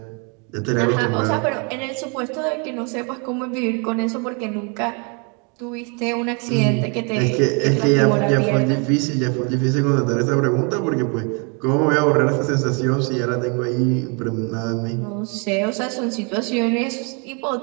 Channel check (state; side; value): quieter; left; 34.8 dB